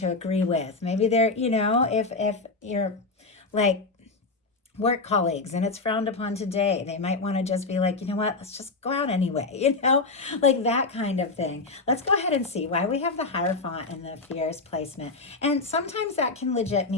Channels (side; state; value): right; quieter; 3.7 dB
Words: agree with. Maybe they're, if you're like work colleagues and it's frowned upon today, they might want to just be like, let's just go out anyway, like that kind of thing. Let's go ahead and see why we have the Hierophant in the fears placement. And sometimes that can legit